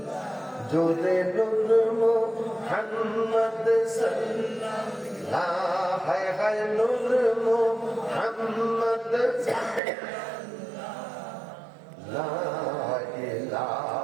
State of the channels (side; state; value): left; drops out; at 9.8 s